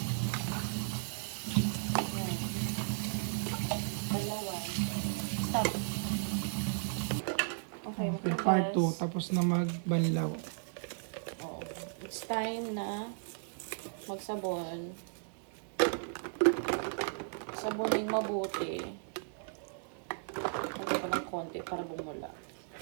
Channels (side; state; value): left; silent; 54 dB below the other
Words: Yan. Banlawan. Stop. Okay, Okay, part 2. Tapos na magbanlaw. Oh, it's time na magsabon. Sabonin mabuti. Lagyan pa ng konti para bumula.